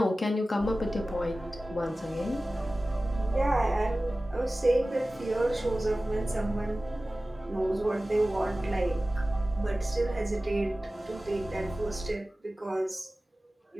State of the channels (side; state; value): both; normal; correlation 0.96